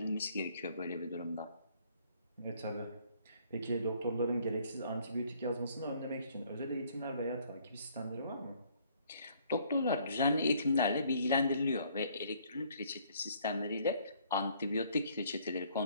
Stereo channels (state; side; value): inverted; both; correlation -0.63